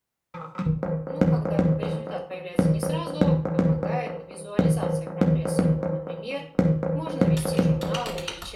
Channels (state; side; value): identical; both; correlation 1.00